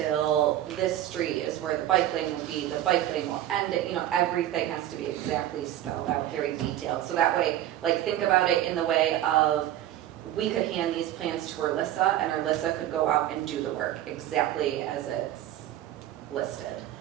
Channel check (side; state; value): left; quieter; 12.8 dB